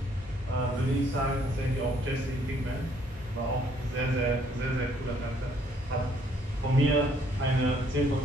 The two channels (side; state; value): both; normal; correlation 0.65